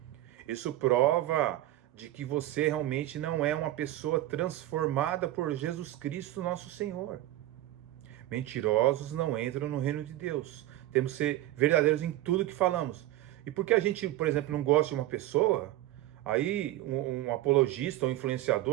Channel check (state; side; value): quieter; left; 15.1 dB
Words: isso prova de que você realmente não é uma pessoa transformada por Jesus Cristo, nosso Senhor. Mentirosos não entram no reino de Deus. Temos que ser verdadeiros em tudo que falamos. E porque a gente, por exemplo, não gosta de uma pessoa, aí um apologista ou